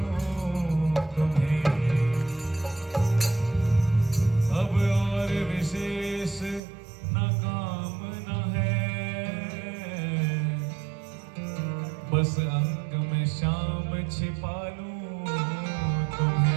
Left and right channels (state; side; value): drops out; left; at 6.6 s